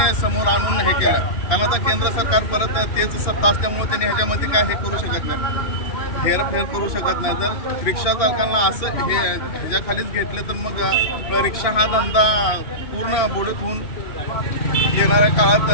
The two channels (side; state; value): right; late; 2.8 ms